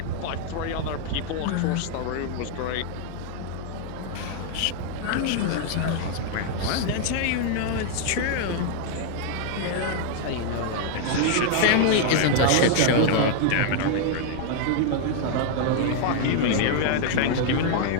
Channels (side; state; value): both; different; correlation 0.00